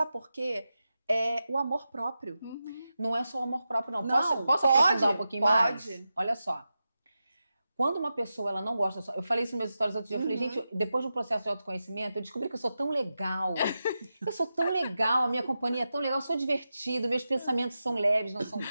por quê? É o amor próprio. Não é só o amor próprio, não. Não, posso aprofundar um pouquinho mais? Pode. Olha só. Quando uma pessoa ela não gosta... Eu falei isso nos meus stories outro dia. Eu falei, gente, depois do processo de autoconhecimento, eu descobri que eu sou tão legal. Eu sou tão legal, a minha companhia é tão legal, eu sou divertida, meus pensamentos são leves, não são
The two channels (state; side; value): inverted; both; correlation -0.91